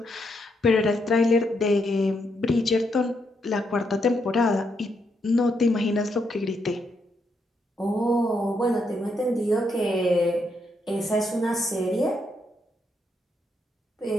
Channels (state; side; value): normal; both; correlation 0.78